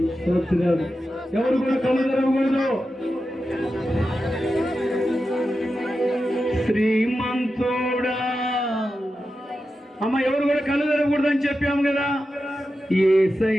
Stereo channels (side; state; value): both; normal; correlation 0.91